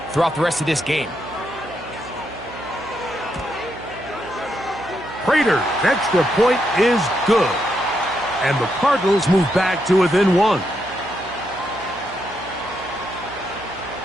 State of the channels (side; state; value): right; noise; hum, 18 dB below the sound